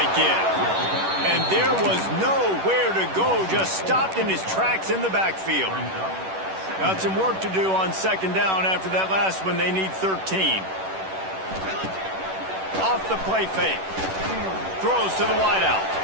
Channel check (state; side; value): late; left; 10 ms